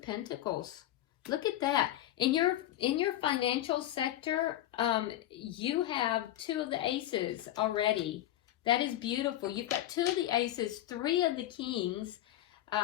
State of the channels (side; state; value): right; quieter; 13.5 dB